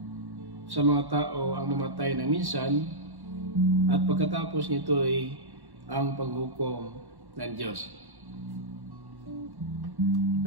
sa mga tao ang mamatay ng minsan at pagkatapos nito ay ang paghukom ng Diyos.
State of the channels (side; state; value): left; late; 1.1 ms